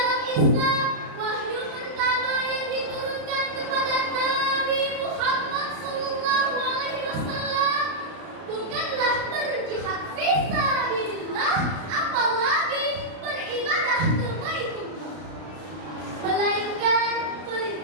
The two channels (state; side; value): late; left; 32 ms